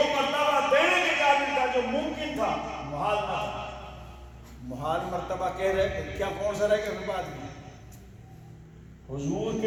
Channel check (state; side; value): identical; both; correlation 1.00